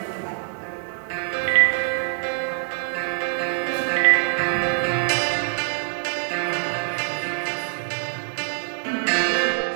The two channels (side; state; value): left; silent; digital silence